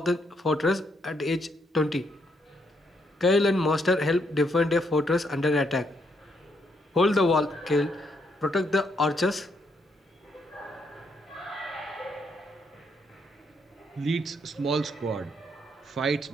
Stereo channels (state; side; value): normal; both; correlation 0.75